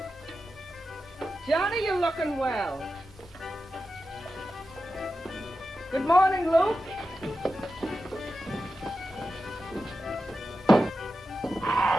Johnny, you're looking well. Good morning, Luke.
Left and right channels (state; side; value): normal; both; correlation 0.91